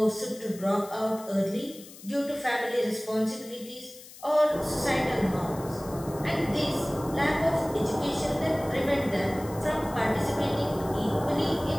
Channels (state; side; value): noise; left; hiss, 18 dB below the sound